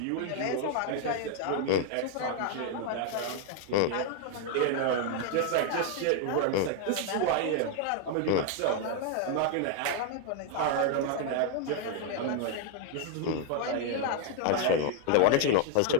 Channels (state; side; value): different; both; correlation 0.00